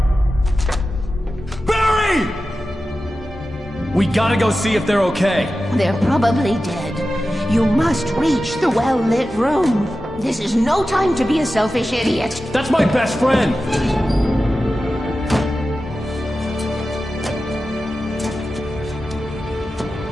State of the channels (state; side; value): normal; both; correlation 0.93